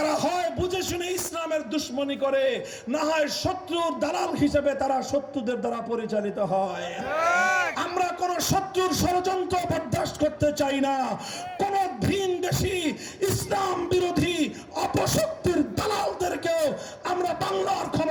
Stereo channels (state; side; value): identical; both; correlation 1.00